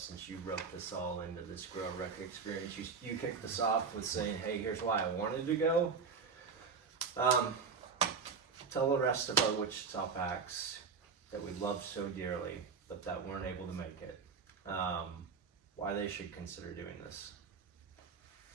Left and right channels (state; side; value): quieter; left; 5.5 dB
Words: since you wrote this all into this GROWRUCK experience. You kicked this off with saying, hey, here's why I wanted to go. Tell the rest of our Wichita Packs that we love so dearly, but that weren't able to make it, why they should consider doing this.